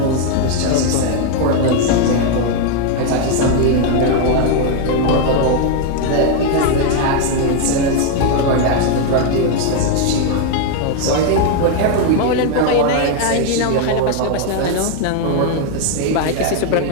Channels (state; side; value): different; both; correlation 0.00